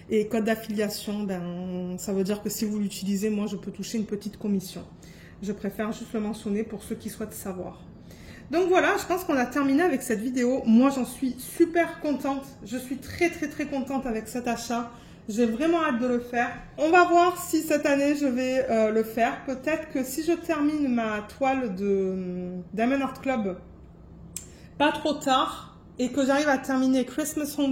Et code d'affiliation, ben, ça veut dire que si vous l'utilisez, moi je peux toucher une petite commission. Je préfère juste le mentionner pour ceux qui souhaitent savoir. Donc voilà, je pense qu'on a terminé avec cette vidéo. Moi j'en suis super contente. Je suis très contente avec cet achat. J'ai vraiment hâte de le faire. On va voir si cette année je vais le faire. Peut-être que si je termine ma toile de Diamond Art Club pas trop tard et que j'arrive à terminer Christmas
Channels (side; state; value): both; identical; correlation 1.00